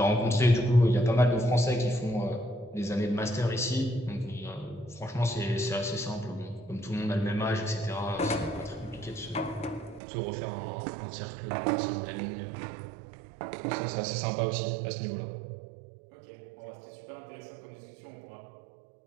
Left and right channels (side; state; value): left; drops out; at 10.0 s